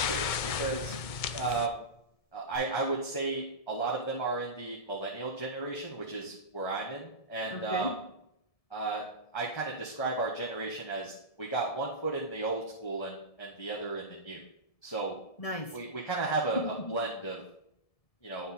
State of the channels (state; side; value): late; right; 1.7 ms